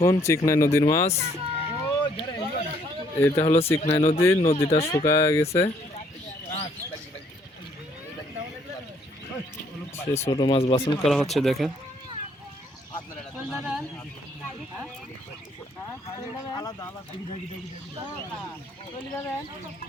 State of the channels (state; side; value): normal; both; correlation 0.66